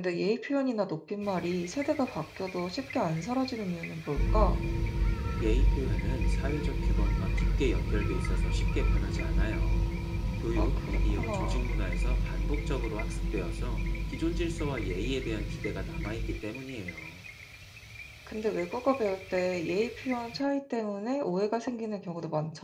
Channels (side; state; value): both; identical; correlation 1.00